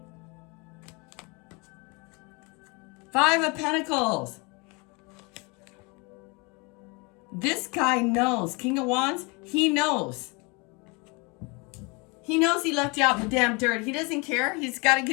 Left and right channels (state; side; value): quieter; right; 29.0 dB